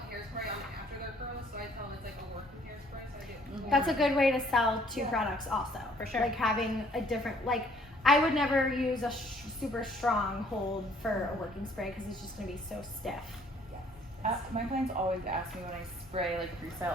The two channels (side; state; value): both; normal; correlation 0.61